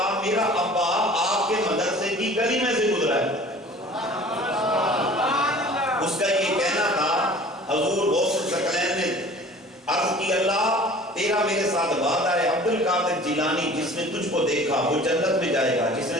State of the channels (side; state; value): both; normal; correlation 0.45